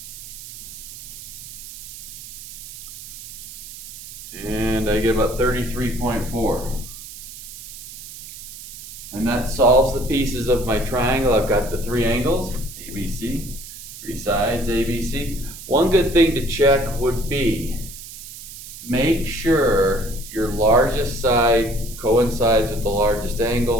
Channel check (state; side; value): noise; right; hiss, 13 dB below the sound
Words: And I get about 33.4. And that solves the pieces of my triangle. I've got the three angles, ABC, three sides, ABC. One good thing to check would be, make sure your largest side coincides with the largest